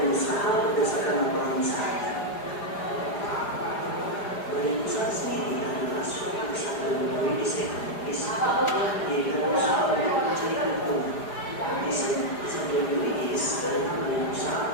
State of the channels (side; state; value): right; late; 4.9 ms